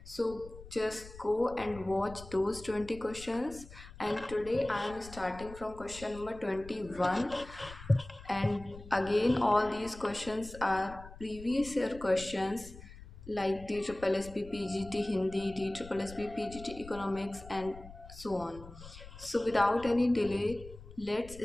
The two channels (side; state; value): left; noise; rumble, 16 dB below the sound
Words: So just go and watch those 20 questions, and today I am starting from question number 21, and again all these questions are previous year questions like DSSP PGT Hindi, DSSP PGT Economics and so on. So without any delay, let's